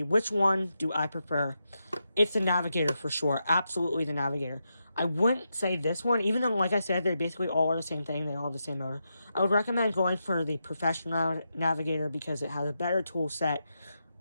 Which one do I prefer? It's the Navigator for sure. Absolutely the Navigator. I wouldn't say this one, even though, like I said, they basically all are the same thing. They all have the same motor. I would recommend going for the professional Navigator because it has a better tool set,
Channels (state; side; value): inverted; both; correlation -0.86